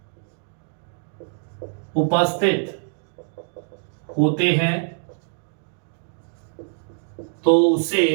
उपस्थित होते हैं, तो उसे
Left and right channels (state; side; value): silent; left; 62 dB below the other